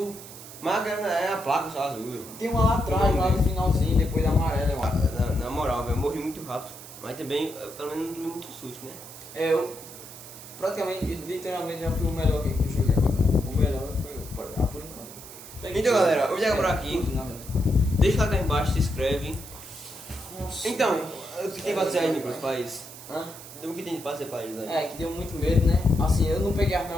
Mas é a placa só azul. Tem uma lá atrás, lá no finalzinho, depois da amarela, eu acho. Na moral, velho, eu morri muito rápido. Mas também, pelo menos, não tomei muito susto, né? É, eu praticamente, literalmente já fui o melhor que eu joguei agora. O melhor foi por enquanto. Então, galera, eu vou chegar por aqui. Tudo, na verdade. Deixa lá cá embaixo, se inscreve. Nossa. Então, o que tem pra dizer aí, Nicolas, pra isso? Hã? O que tem pra dizer pra eles aí? É, que deu muito medo, né? Assim, eu não peguei as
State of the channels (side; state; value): right; noise; hiss, 15 dB below the sound